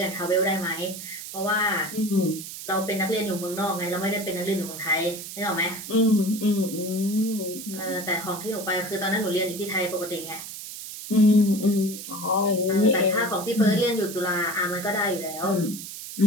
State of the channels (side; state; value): right; noise; hiss, 10 dB below the sound